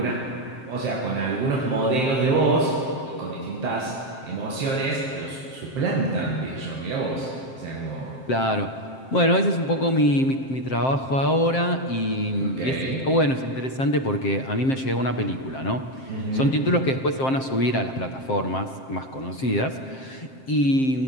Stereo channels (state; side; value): late; right; 7.6 ms